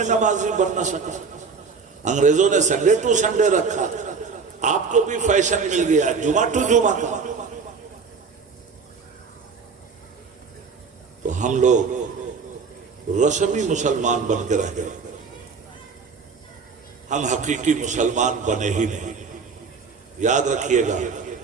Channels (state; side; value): quieter; left; 5.2 dB